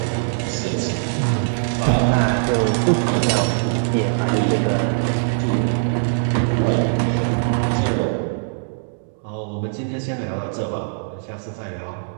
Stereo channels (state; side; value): silent; left; digital silence